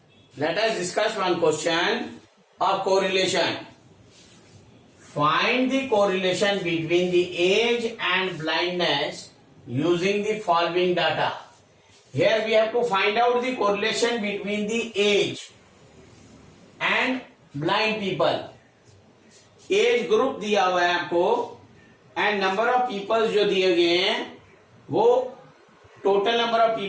Let us discuss one question of correlation. Find the correlation between the age and blindness using the following data. Here we have to find out the correlation between the age and blind people. Age group दिया हुआ है आपको and number of people जो दिए गए हैं वो total number of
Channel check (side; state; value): both; identical; correlation 1.00